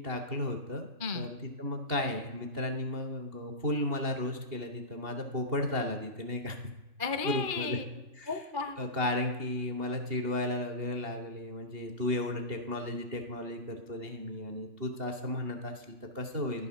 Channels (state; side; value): late; left; 2.8 ms